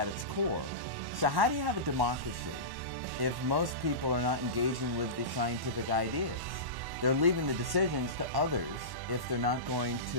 its core. So how do you have a democracy if most people are not engaging with the scientific ideas? They're leaving the decisions to others if they're not going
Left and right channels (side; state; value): left; late; 1.1 ms